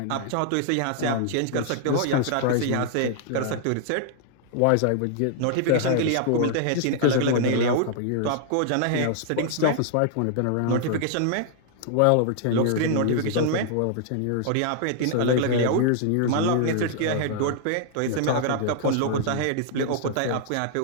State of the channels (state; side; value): different; both; correlation -0.01